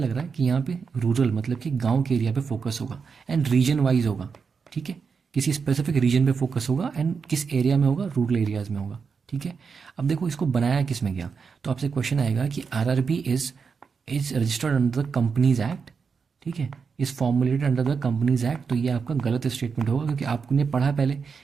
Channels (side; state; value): left; quieter; 5.6 dB